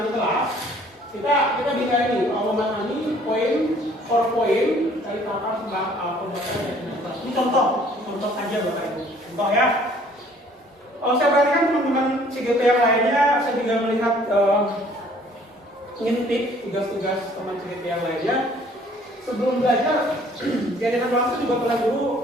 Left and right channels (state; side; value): normal; both; correlation 0.57